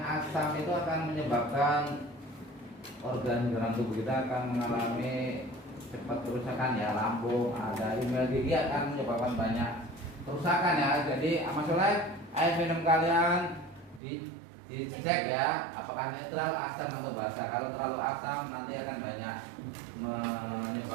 itu akan menyebabkan organ dalam tubuh kita akan mengalami cepat kerusakan ya, lambung, ada email gigi akan menyebabkan banyak kerusakan ya. Jadi masalah air minum kalian dicek ya, apakah netral, asam atau basa. Kalau terlalu asam nanti akan banyak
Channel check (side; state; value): left; drops out; at 14.0 s